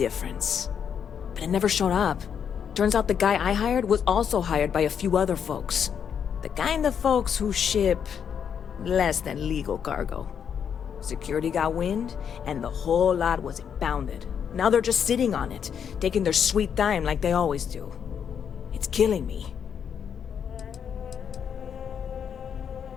But it never showed up. Turns out the guy I hired was also hired by a few other folks. The kind of folks who ship less than legal cargo. Security got wind, and the whole lot was impounded. Now they're just sitting on it, taking their sweet time like they always do. It's killing me.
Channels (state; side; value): quieter; right; 7.8 dB